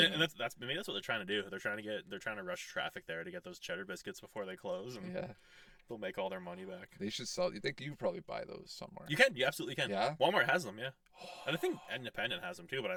that's maybe that's what they're trying to do. They're trying to rush traffic there to get those cheddar biscuits before they close, and Yeah, they'll make all their money back. they should sell. You think you probably buy those somewhere? You can, you absolutely can. Yeah? Walmart has them, yeah. And I think Independent has them too, but I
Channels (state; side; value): identical; both; correlation 1.00